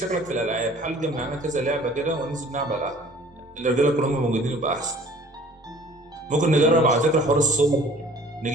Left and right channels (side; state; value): both; normal; correlation 0.51